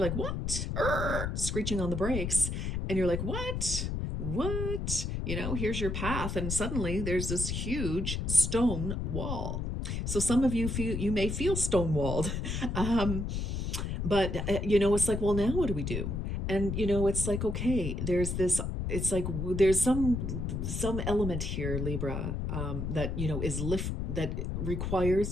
like, what? Screeching on the brakes. And you're like, what? Here's your path. And suddenly there's this huge stone wall. So some of you may feel stonewalled. But, it's like, well, now what do we do? And, it's like, okay, it's like there's some element here, Libra, that, that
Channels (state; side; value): noise; left; rumble, 2 dB below the sound